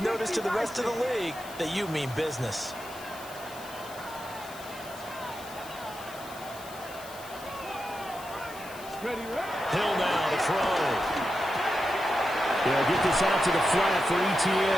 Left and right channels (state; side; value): noise; left; hiss, 17 dB below the sound